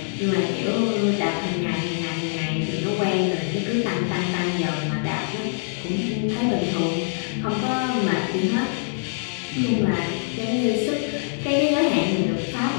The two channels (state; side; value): silent; right; digital silence